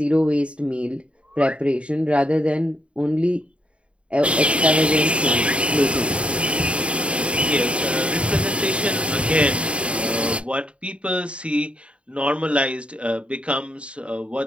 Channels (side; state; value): left; late; 0.060 ms